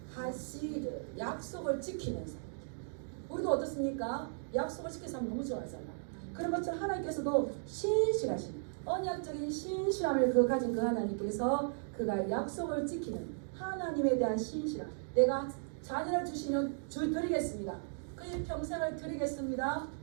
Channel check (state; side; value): silent; left; digital silence